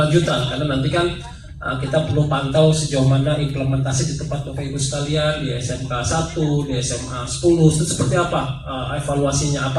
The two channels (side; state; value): both; identical; correlation 1.00